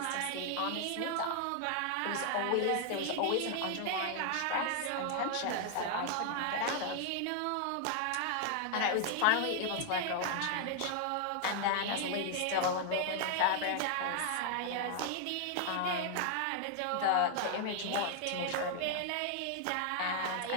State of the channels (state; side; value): different; both; correlation 0.00